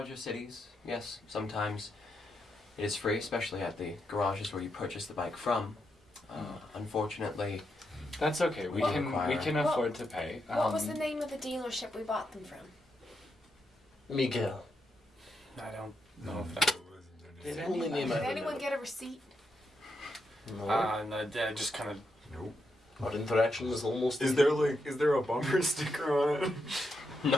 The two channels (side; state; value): both; normal; correlation 0.82